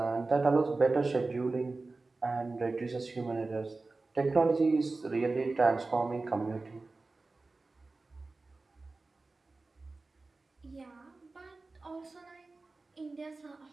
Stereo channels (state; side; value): quieter; left; 3.5 dB